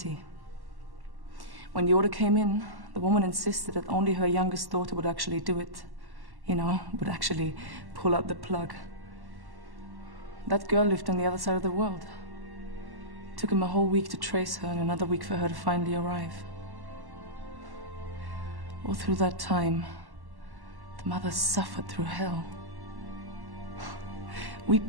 When the order came in, the woman insisted that only her youngest daughter would actually do it. You know, would actually pull out the plug. That girl lived on the other side of the world. It took him a whole week to trace her and another week for her to finally arrive. All through that time, the mother suffered through hell. We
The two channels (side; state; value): left; late; 1.1 ms